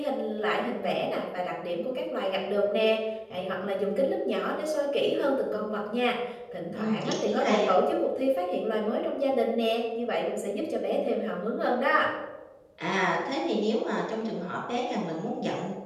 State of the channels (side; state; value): both; identical; correlation 1.00